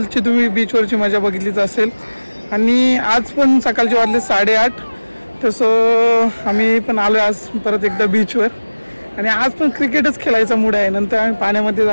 तुम्ही बीचवरची मजा बघितलीच असेल आणि आज पण सकाळचे वाजले 8:30। तसं आम्ही पण आलो आज परत एकदा बीचवर आणि आज पण क्रिकेटच खेळायचा मूड आहे। नंतर आम्ही पाण्यामध्ये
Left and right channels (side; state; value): both; inverted; correlation -1.00